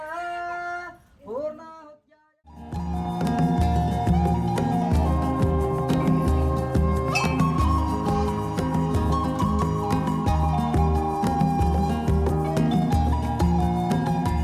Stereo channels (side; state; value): both; identical; correlation 1.00